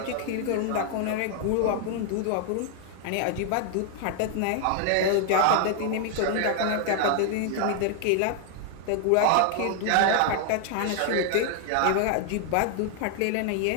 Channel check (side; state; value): both; different; correlation 0.00